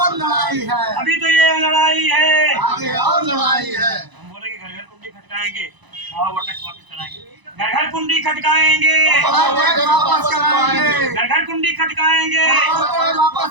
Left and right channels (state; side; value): late; left; 1.0 ms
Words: लड़ाई है, अभी तो ये लड़ाई है, आगे और लड़ाई है। हम बोले कि घर घर कुंडी खटकाएंगे, वो टैक्स वापस कराएंगे, घर घर कुंडी खटकाएंगे, वापस कराएंगे, घर घर कुंडी खटकाएंगे,